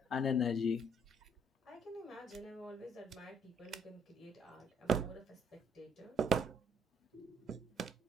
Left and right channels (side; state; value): both; normal; correlation 0.66